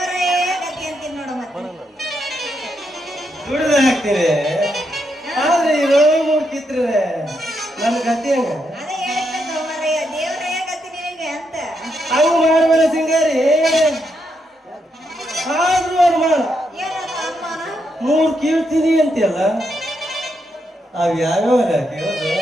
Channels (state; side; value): normal; both; correlation 0.81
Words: ಗತಿ ಅಂತೀನಿ ನೋಡು. ಮತ್ತೆ ದುಡಿದು ಹಾಕ್ತೀನಿ. ಆದ್ರೆ ಇರೋ ಮೂರ್ತಿದ್ರೆ ನನ್ನ ಗತಿ ಹೆಂಗ? ಅದೇ ಹೇಳ್ಬೇಕು ಮಾರಾಯ, ದೇವರೇ ಗತಿ ನಿನಗೆ ಅಂತ. ಹಂಗ ಮಾಡ್ಬೇಡ ಸಿಂಗಾರಿ. ಆದ್ರೂ ಅವ್ರು ಮಾಡ ಏನಂತ ಅಮ್ಮನ ಮೂರ್ ಕೀಳ್ತೀನಿ ಅಂತೀಯಲ್ಲ, ಅವ್ ಯಾವ್ಯಾವ ಕೇಳೋದು